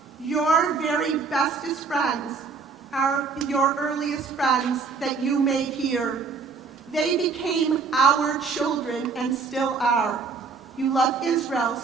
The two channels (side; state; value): left; quieter; 5.0 dB